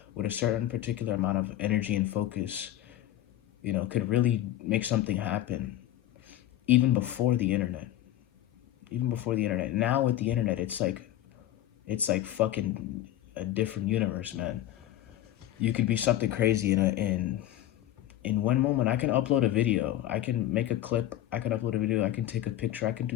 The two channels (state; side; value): quieter; right; 12.9 dB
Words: with a certain particular amount of energy and focus, you know, could really make something happen even before the internet. Even before the internet. Now with the internet, it's like fucking a different universe, man. You could be something crazy in one moment. I can upload a video, I can make a clip, I can upload a video, I can take a picture, I can do